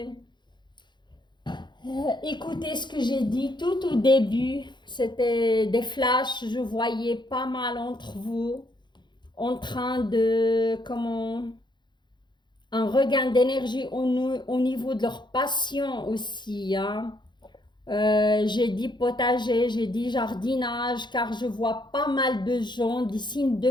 écouté ce que j'ai dit tout au début, c'était des flashs, je voyais pas mal entre vous en train de, comment, un regain d'énergie au niveau de leur passion aussi. Hein. J'ai dit potager, j'ai dit jardinage, car je vois pas mal de gens, des signes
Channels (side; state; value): right; late; 0.22 ms